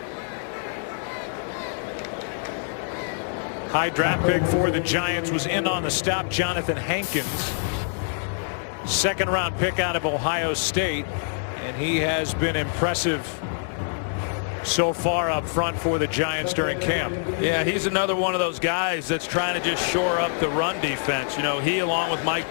High draft pick for the Giants was in on the stop, Jonathan Hankins. Second-round pick out of Ohio State, and he has been impressive so far up front for the Giants during camp. Yeah, he's another one of those guys that's trying to just shore up the run defense. You know, he along with Mike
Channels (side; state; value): right; silent; digital silence